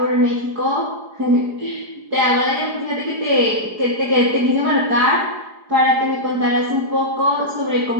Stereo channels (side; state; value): left; late; 4.8 ms